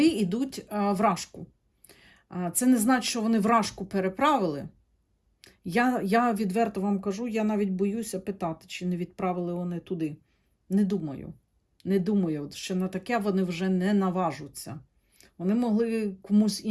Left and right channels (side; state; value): both; identical; correlation 1.00